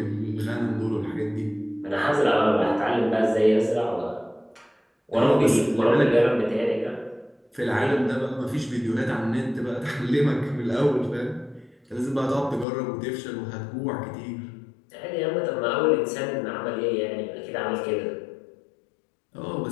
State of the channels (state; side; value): drops out; right; at 12.7 s